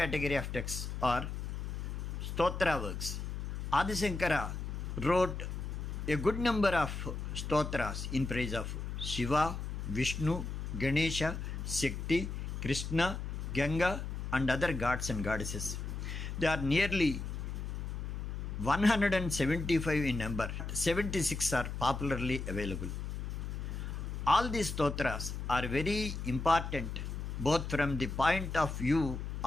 of texts are Stotra works. Adi Shankara wrote a good number of stotras in praise of Shiva, Vishnu, Ganesha, Shakti, Krishna, Ganga and other gods and goddesses. They are nearly 175 in number. 76 are popularly available. All these stotras are very important both from the point of view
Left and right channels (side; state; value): left; noise; hum, 5 dB below the sound